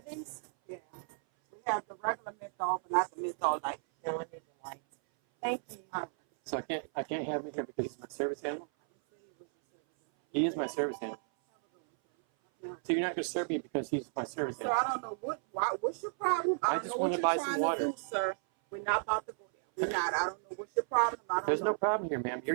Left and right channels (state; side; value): silent; left; 55 dB below the other